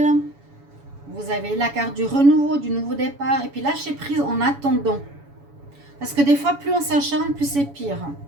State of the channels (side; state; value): left; late; 7.1 ms